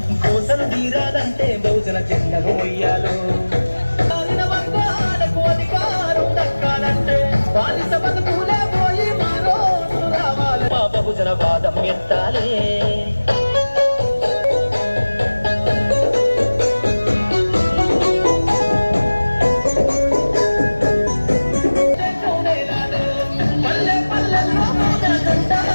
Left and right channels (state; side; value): inverted; both; correlation -1.00